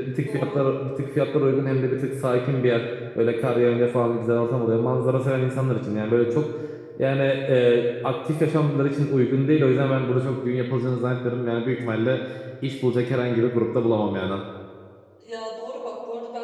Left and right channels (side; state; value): both; identical; correlation 1.00